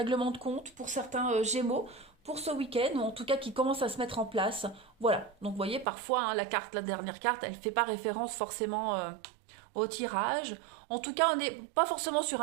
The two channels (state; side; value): drops out; left; at 5.9 s